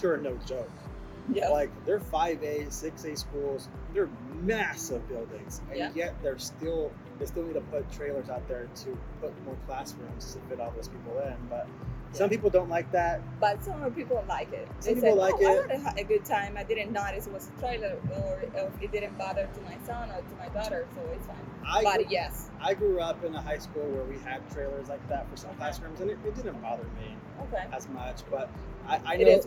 here are no joke. Yeah. Like they're 5A, 6A schools. They're massive buildings, and yet they still need to put trailers out there to put more classrooms to fit all those people in. But some people don't like that. But some people like it. Some people like it. I had a good time. I didn't notice it was a trailer, or it didn't bother to my son or to my daughter, so it's fine. Yes. I grew up in a high school where we had trailers like that for some classrooms, and it didn't bother me as much. But I know it is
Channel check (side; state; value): both; identical; correlation 1.00